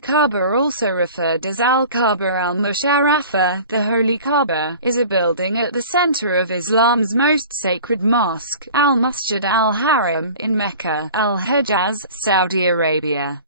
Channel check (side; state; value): both; inverted; correlation -0.42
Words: also referred as Al-Kaaba al-Musharrafa, the Holy Kaaba, is a building at the center of Islam's most sacred mosque, Al-Masjid al Haram, in Mecca, al-Hejaz, Saudi Arabia.